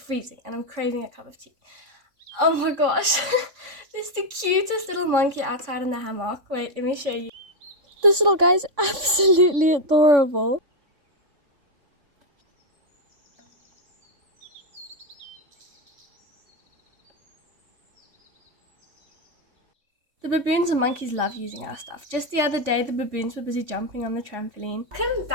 and I'm craving a cup of tea. Oh my gosh, there's the cutest little monkey outside in the hammock. Wait, let me show you. This little guy is absolutely adorable. The baboons and monkeys love using our stuff. Just the other day, the baboons were busy jumping on the trampoline. Welcome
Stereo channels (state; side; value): late; left; 3.5 ms